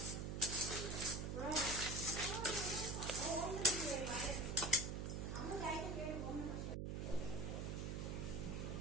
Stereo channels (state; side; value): noise; right; hum, 2 dB below the sound